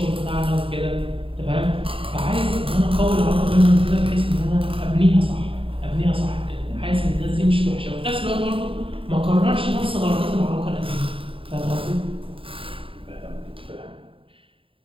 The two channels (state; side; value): late; left; 0.26 ms